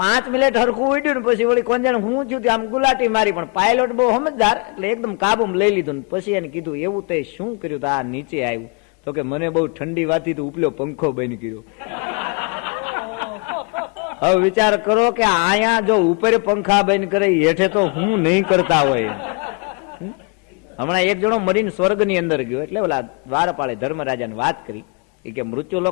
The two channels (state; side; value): quieter; right; 33.3 dB